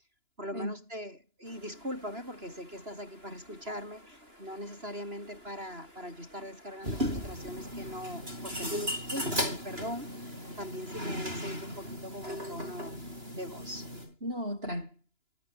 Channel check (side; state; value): left; late; 2.9 ms